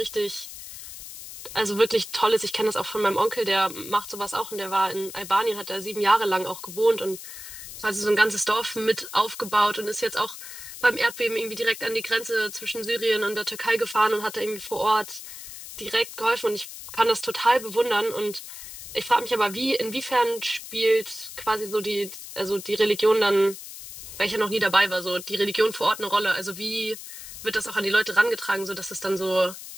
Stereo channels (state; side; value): noise; left; hiss, 12 dB below the sound